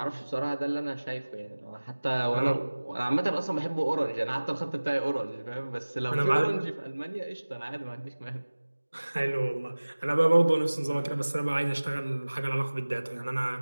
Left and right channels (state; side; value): inverted; both; correlation -1.00